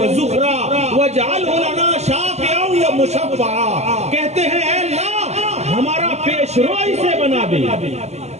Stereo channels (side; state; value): left; late; 0.32 ms